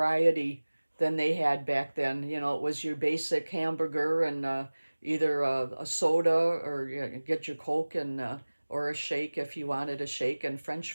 than they had back then. You know, it was your basic hamburger and either a soda or get your Coke and or a shake if you wanted a shake and French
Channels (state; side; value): inverted; both; correlation -1.00